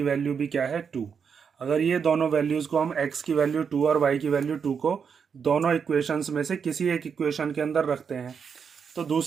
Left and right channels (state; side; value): quieter; left; 6.6 dB